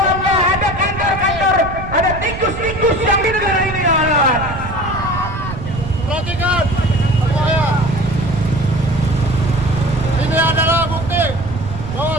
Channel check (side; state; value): right; noise; rumble, 9 dB below the sound